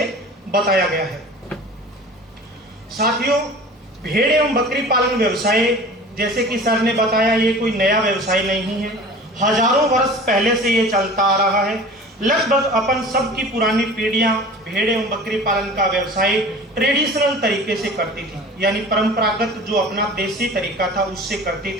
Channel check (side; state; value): both; normal; correlation 0.41